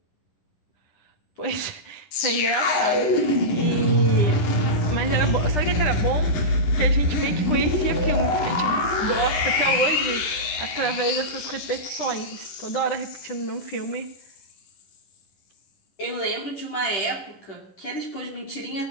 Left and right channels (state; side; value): late; right; 11 ms